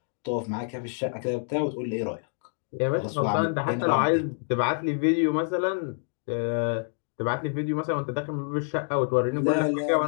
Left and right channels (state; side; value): silent; right; digital silence